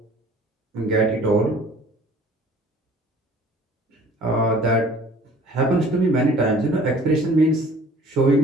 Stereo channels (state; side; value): normal; both; correlation 0.51